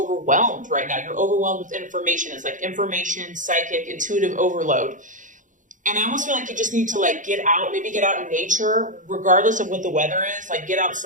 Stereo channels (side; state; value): left; late; 0.37 ms